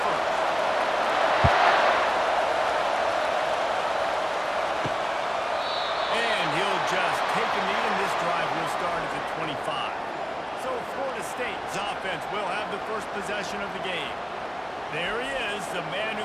first. And he'll just take a knee, and this drive will start at the 25. So Florida State's offense will have the first possession of the game. There he is, the man who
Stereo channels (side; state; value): both; identical; correlation 1.00